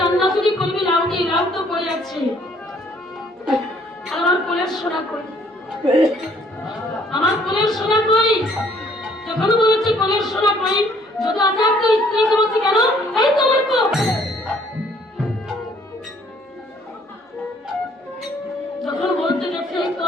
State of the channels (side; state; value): both; normal; correlation 0.62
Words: রান্না যদি করবি লাউ দিয়ে, লাউ তো পড়ে আছে। আর আমার কোলের সোনা কই? আমার কোলের সোনা কই? যখন বলেছে কোলের সোনা কই, যদি আচার্য স্ত্রীকে বলছে, কেন? এই তোমার কোল। যখন বলতে গেছে এই তো